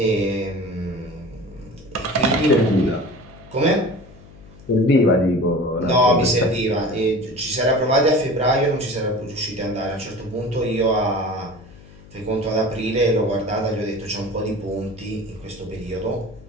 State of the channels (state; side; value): noise; left; hum, 21 dB below the sound